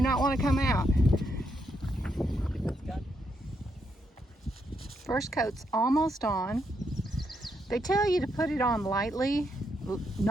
want to come out. First coat's almost on. They tell you to put it on lightly,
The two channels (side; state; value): both; normal; correlation 0.79